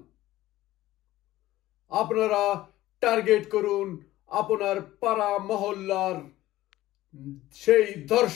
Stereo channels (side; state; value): right; quieter; 15.9 dB